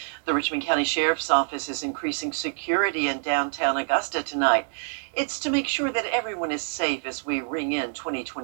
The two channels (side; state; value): left; silent; 61 dB below the other